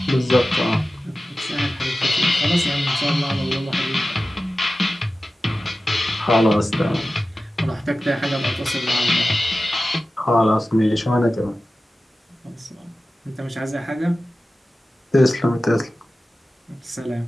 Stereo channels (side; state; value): both; normal; correlation 0.95